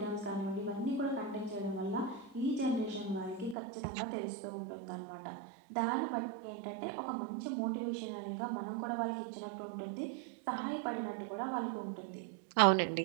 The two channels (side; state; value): left; drops out; at 3.6 s